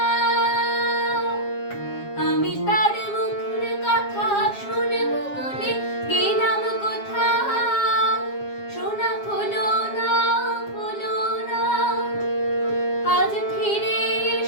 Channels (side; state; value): right; late; 7.3 ms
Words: আমি তার মুখের কথা শুনব বলে গেলাম কোথাও, শোনা হলো না, হলো না। আজ ফিরে